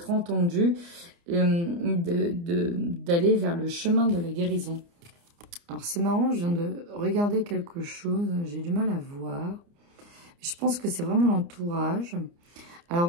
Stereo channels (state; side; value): late; left; 29 ms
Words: entendu, d'aller vers le chemin de la guérison. Alors, c'est marrant, je viens de regarder quelque chose, j'ai du mal à voir. Je pense que c'est vraiment l'entourage.